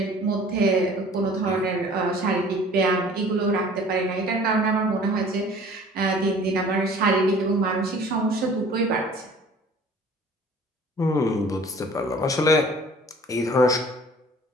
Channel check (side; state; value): both; normal; correlation 0.49